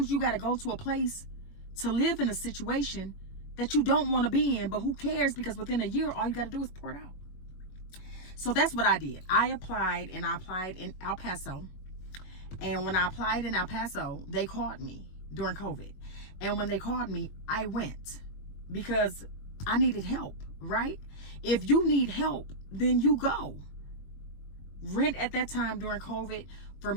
you got to go to a place to live in a situation that you don't want to be in, but who cares, because within a year, all you got to do is pour it out. So that's what I did. I applied in El Paso. And when I applied in El Paso, they called me during COVID. And when they called me, I went because I needed help, right? If you need help, then you go. Rent at that time during COVID for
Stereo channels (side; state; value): right; late; 21 ms